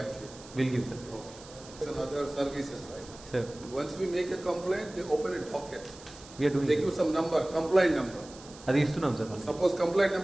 will give sir. And other services, right? Sir. Once we make a complaint, they open a docket. We are doing. They give some number, complaint number. అది ఇస్తున్నాం సార్. Suppose complaint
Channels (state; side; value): noise; right; hiss, 19 dB below the sound